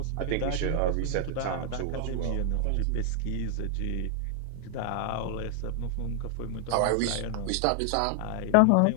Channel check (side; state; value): both; different; correlation 0.00